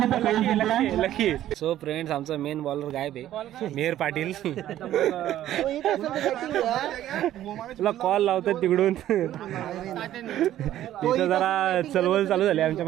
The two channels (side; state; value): left; quieter; 12.7 dB